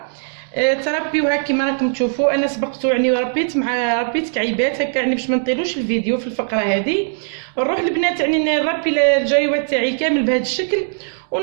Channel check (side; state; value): left; silent; digital silence